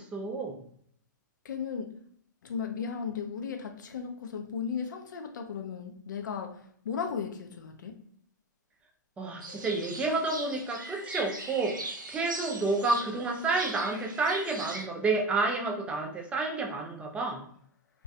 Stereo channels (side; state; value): both; normal; correlation 0.26